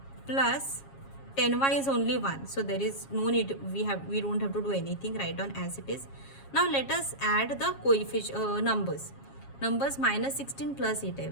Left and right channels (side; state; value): right; late; 7.3 ms